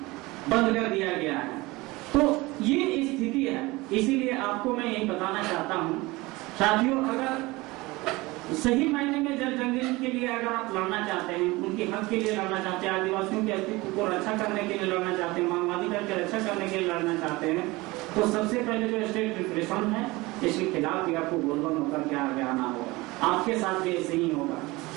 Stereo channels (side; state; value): left; quieter; 21.8 dB